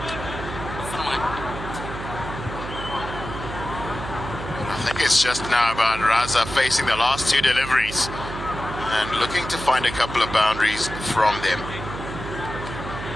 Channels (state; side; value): noise; right; hum, 9 dB below the sound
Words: I think it's just now about Raza facing the last 2 deliveries and looking to find a couple of boundaries from them.